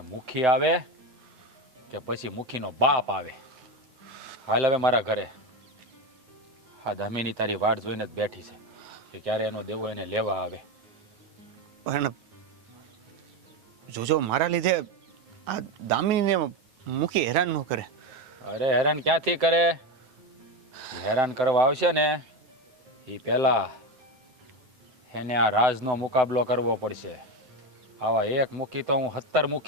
મુખી આવે કે પછી મુખીનો બાપ આવે. હાલ હવે મારા ઘરે. હા દામિની તારી વાટ જોઈને જ બેઠી છે કે ક્યારે એનો દેવો એને લેવા આવે. પણ જોજો મારા લીધે આ દામિનીને મુખી હેરાન ન કરે. અરે હેરાન ક્યાંથી કરે? હેરાન કરવા આવશે ને એ પહેલા એને આ રાજનો મુકાબલો કરવો પડશે. આવા એક મુખી તો હું 17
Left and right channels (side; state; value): left; late; 9.3 ms